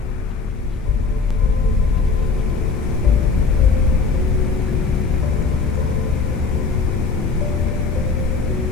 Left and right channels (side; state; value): right; quieter; 4.5 dB